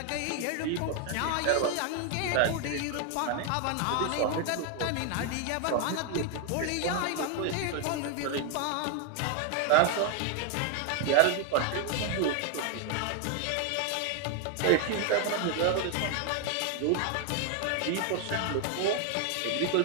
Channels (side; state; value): both; different; correlation 0.01